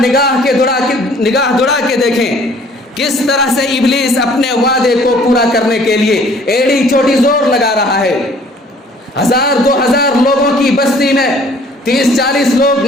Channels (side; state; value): both; normal; correlation 0.56